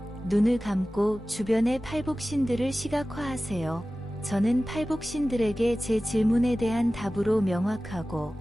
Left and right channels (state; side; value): normal; both; correlation 0.96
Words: 눈을 감고 주변의 팔복신들을 시각화하세요. 저는 팔복신들에게 제 질문에 대한 답으로 명확하고